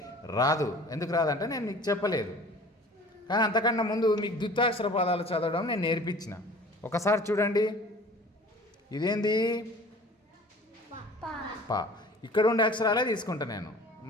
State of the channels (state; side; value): normal; both; correlation 0.46